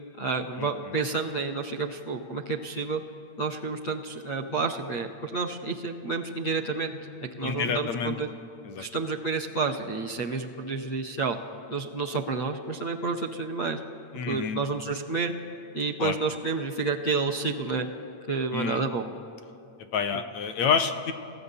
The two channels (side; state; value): right; late; 8.7 ms